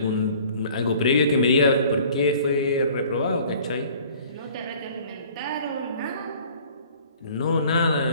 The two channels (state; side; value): inverted; both; correlation -0.51